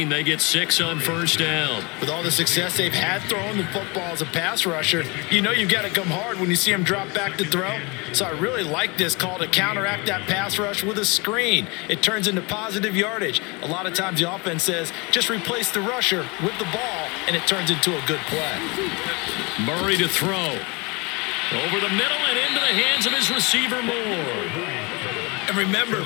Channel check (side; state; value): right; quieter; 28.0 dB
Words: They get 6 on first down. With all the success they've had throwing the football as a pass rusher, you know you've got to come hard when you see them drop back to throw. So I really like this call to counteract that pass rush with a screen. It turns into positive yardage. A lot of times the offense says, just replace the rusher with the ball, and it turns into a good play. Murray to throw. Over the middle and into the hands of his receiver, Moore. And remember,